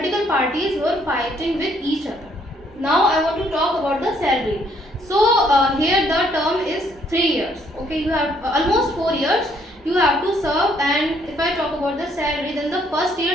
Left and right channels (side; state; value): both; normal; correlation 0.67